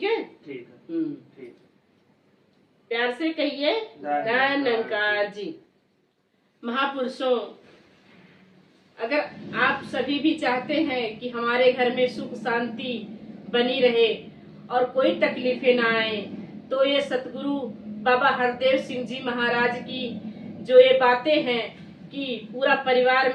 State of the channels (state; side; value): identical; both; correlation 1.00